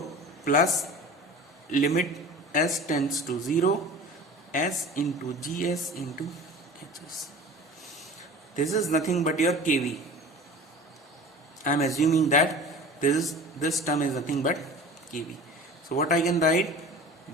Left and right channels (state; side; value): normal; both; correlation 0.39